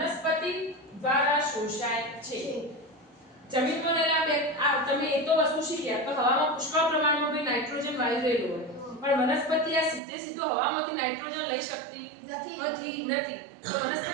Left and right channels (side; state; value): left; drops out; at 10.0 s